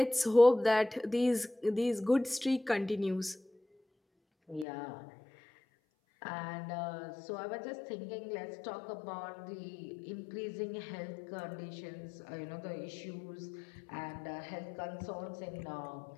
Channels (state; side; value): drops out; right; at 4.7 s